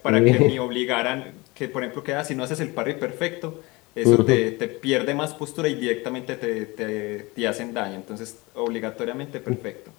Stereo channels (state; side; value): quieter; right; 24.0 dB